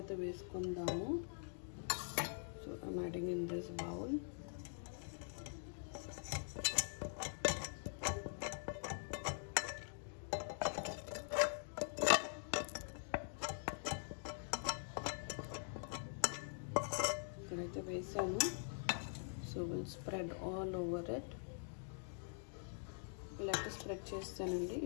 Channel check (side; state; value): right; silent; digital silence